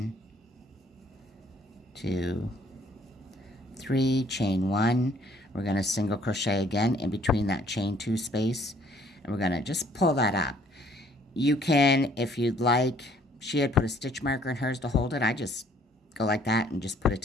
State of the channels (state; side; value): normal; both; correlation 0.61